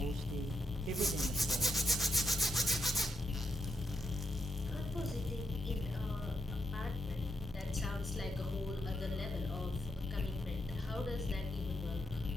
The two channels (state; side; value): normal; both; correlation 0.81